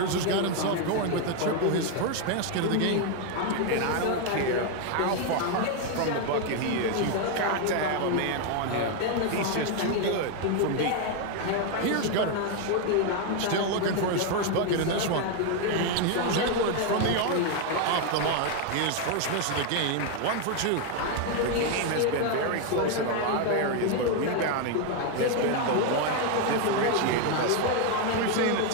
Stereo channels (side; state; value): both; different; correlation 0.01